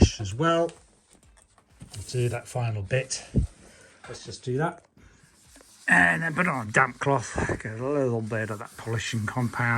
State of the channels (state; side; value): identical; both; correlation 1.00